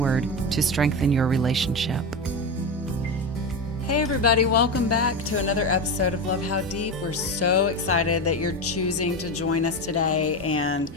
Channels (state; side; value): normal; both; correlation 0.18